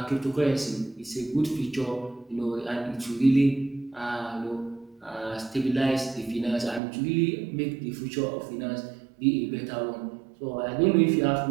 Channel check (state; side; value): drops out; left; at 6.8 s